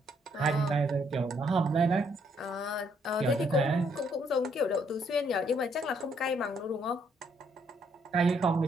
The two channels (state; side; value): normal; both; correlation 0.70